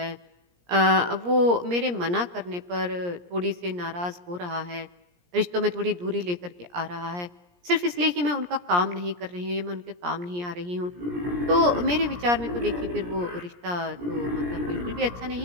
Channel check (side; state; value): left; late; 17 ms